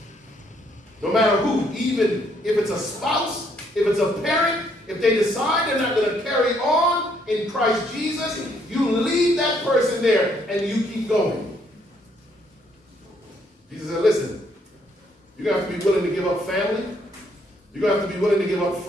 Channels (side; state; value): both; normal; correlation 0.69